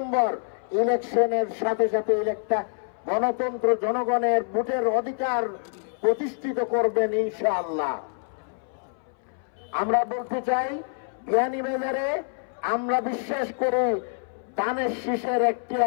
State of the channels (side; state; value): right; silent; 61 dB below the other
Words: ইলেকশনের সাথে সাথে একটা গণতন্ত্র, জনগণের ভোটের অধিকার প্রতিষ্ঠিত করবেন ইনশাআল্লাহ। আমরা বলতে চাই বিয়ানীবাজারে আমরা বিশ্বাস করি দানের শীষের একটি